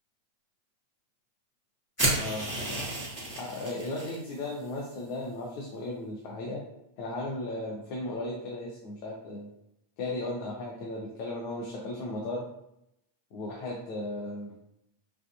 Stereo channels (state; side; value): late; right; 8.8 ms